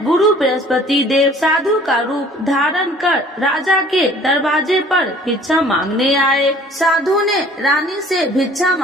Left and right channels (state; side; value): normal; both; correlation 0.52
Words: गुरु बृहस्पति देव साधु का रूप धारण कर राजा के दरवाजे पर भिक्षा मांगने आए। साधु ने रानी से भिक्षा